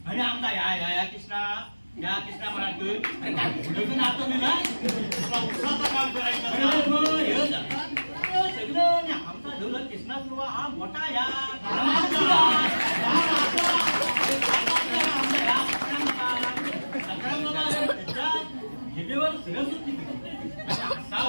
आणि आमचा या कृष्णा म्हणाल अरे काय नातो मी काम करायचं सगळं आमचा ढोलक कृष्णा सुरुवा हा मोठा या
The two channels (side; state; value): both; inverted; correlation -1.00